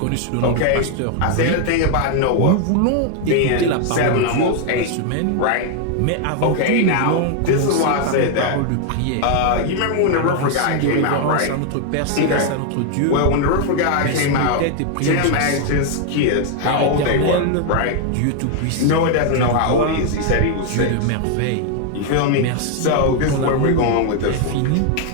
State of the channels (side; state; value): both; different; correlation 0.00